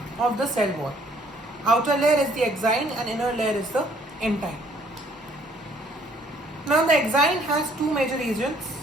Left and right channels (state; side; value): normal; both; correlation 0.62